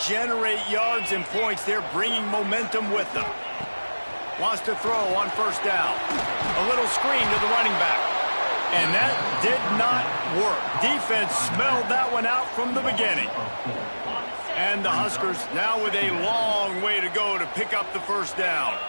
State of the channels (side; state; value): both; inverted; correlation -1.00